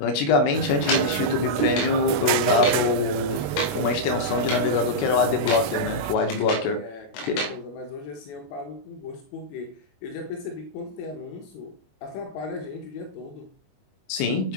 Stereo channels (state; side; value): late; right; 21 ms